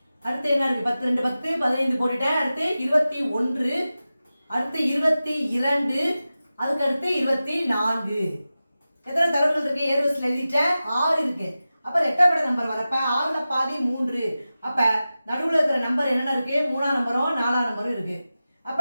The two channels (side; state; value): both; inverted; correlation -0.94